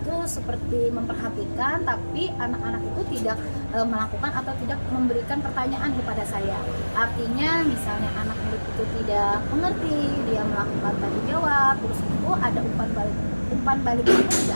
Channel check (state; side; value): inverted; both; correlation -1.00